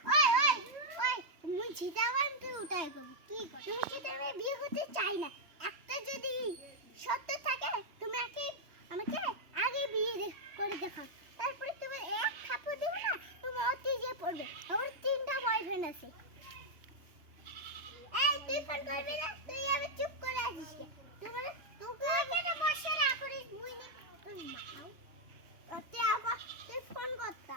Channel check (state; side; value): late; left; 3.2 ms